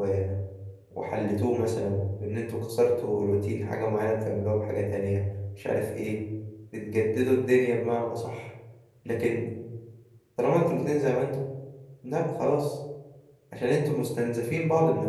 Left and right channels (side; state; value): both; identical; correlation 1.00